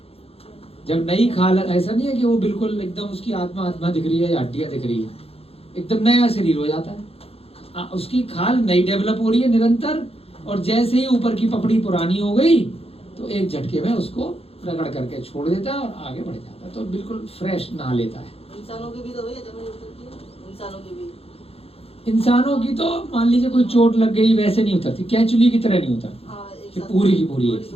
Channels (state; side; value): late; right; 0.29 ms